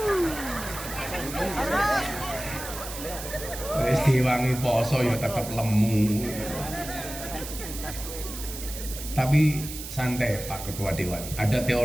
Wis diwangi poso ya tetap lemu. Tapi santai Pak Ketua Dewan. Ada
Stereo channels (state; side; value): noise; right; hiss, 10 dB below the sound